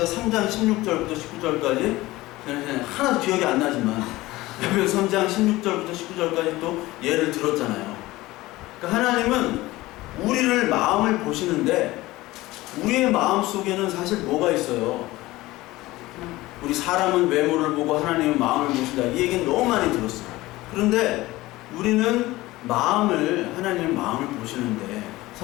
3장 16절부터 19절까지 하나도 기억이 안 나지만 에베소 3장 16절부터 19절까지 또 예를 들었잖아요. 그러니까 하나님은 우리를 마음을 보시는데 우리의 마음 속에는 사실 뭐가 있어요? 우리 사람은 외모를 보고 하나님은 마음을 보신다. 이 얘기는 너무 많이 들었어요. 그런데 우리는 하나님은 마음을 보시는데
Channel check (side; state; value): right; quieter; 18.7 dB